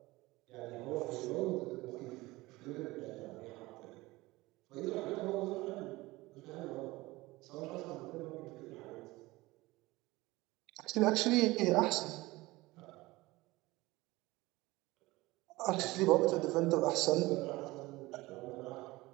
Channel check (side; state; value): left; quieter; 20.3 dB